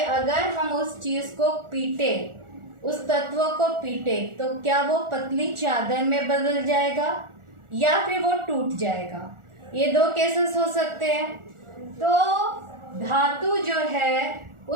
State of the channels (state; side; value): late; left; 1.4 ms